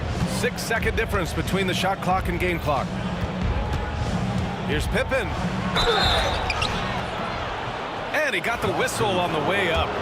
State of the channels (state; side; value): identical; both; correlation 1.00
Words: 6-second difference between the shot clock and game clock. Here's Pippen. And he got the whistle on the way up,